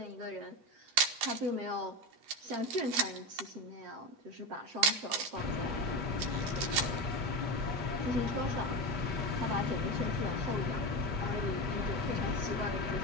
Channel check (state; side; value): late; left; 8.3 ms